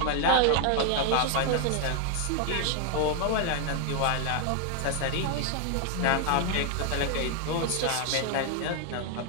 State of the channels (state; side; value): different; both; correlation 0.00